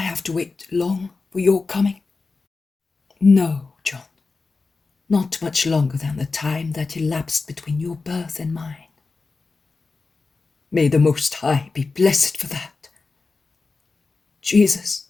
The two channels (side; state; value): right; quieter; 4.0 dB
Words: to wait long for your coming?" "No, John, not much longer than the time that elapsed between your birth and mine." "May the Most High be blessed for that. Jesus,